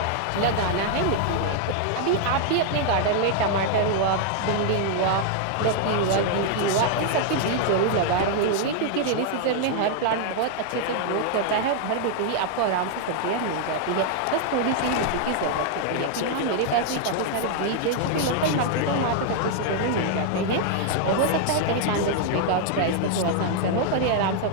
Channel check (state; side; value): different; both; correlation 0.00